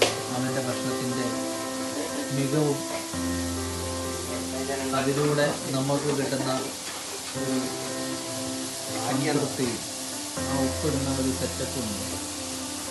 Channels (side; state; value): both; identical; correlation 1.00